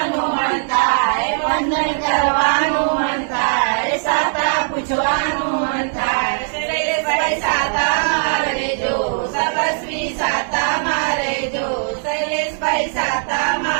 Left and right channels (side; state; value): left; silent; digital silence